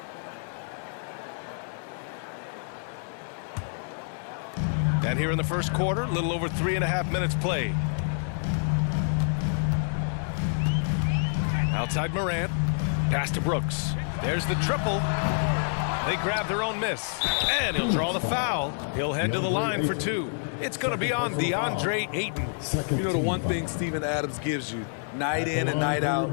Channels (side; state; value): right; silent; digital silence